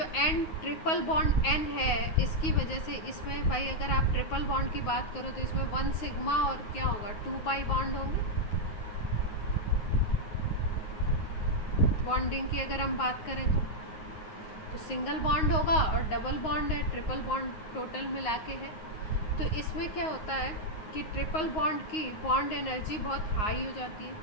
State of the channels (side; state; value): right; late; 9.5 ms